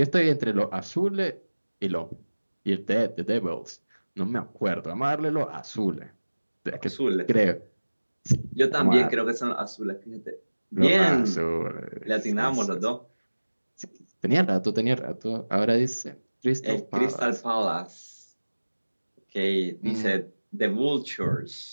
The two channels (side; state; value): both; inverted; correlation -1.00